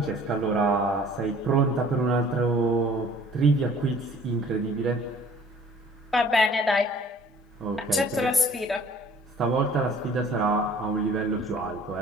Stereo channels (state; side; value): normal; both; correlation 0.52